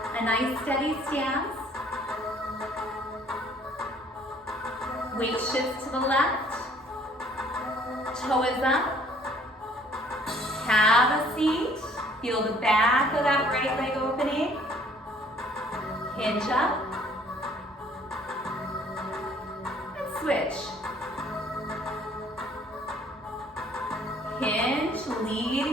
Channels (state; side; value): normal; both; correlation 0.59